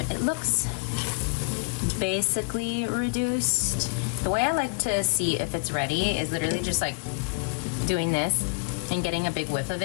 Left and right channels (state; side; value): quieter; right; 36.2 dB